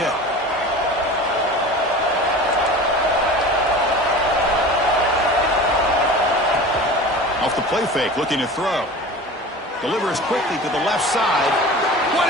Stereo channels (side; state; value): both; normal; correlation 0.36